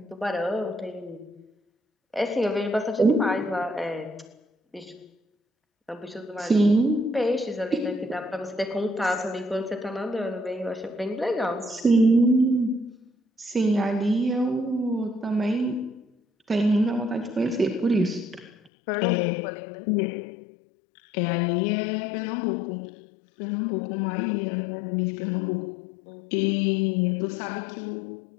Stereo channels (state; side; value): drops out; right; at 18.7 s